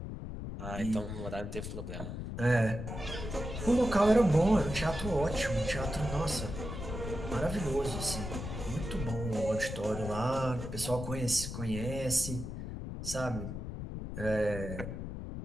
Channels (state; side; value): noise; left; rumble, 6 dB below the sound